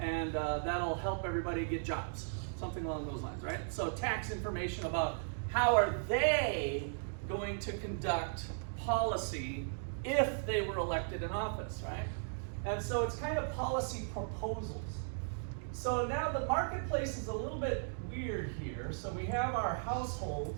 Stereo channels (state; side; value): silent; left; digital silence